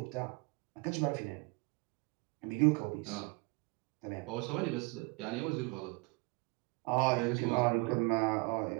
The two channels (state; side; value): quieter; left; 27.7 dB